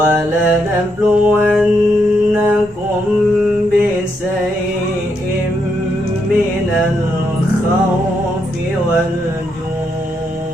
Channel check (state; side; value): normal; both; correlation 0.79